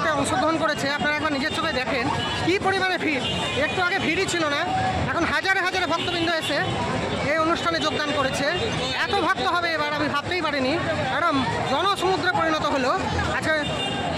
অংশগ্রহণ করেছে। আপনারা একবার নিজের চোখে দেখেন কী পরিমাণে ভিড়। একটু আগে ভিড়ই ছিল না, এখন হাজারে হাজারে ভক্তবৃন্দ এসে এই অনুষ্ঠানে যোগদান করেছে। এত ভক্ত হবে এবার আমি ভাবতেই পারিনি। একদম জনসমুদ্রে পরিণত হলো। আচ্ছা,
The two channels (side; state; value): both; identical; correlation 1.00